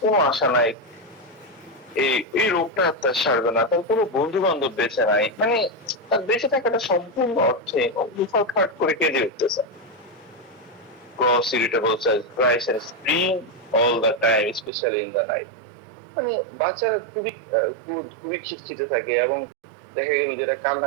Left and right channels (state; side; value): drops out; left; at 14.7 s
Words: কোনো আশা নাই, এই রোগটা তার সারবে না, তার কোনো বন্ধু বান্ধব বেঁচে নাই, মানে তার বেঁচে থাকাটা সম্পূর্ণ অর্থে হঠাৎ করে কেঁদে উঠতেছে। Gross irritable cells cries and scream all the time, especially in the night. মানে বাচ্চারা খুবই খিটখিটে থাকে, এবং দেখা গেল যেটা